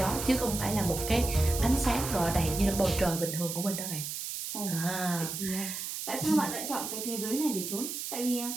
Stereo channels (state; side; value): noise; right; hiss, 5 dB below the sound